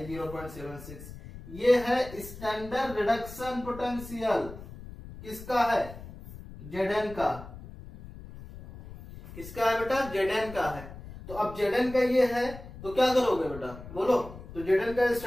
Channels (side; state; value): left; noise; rumble, 14 dB below the sound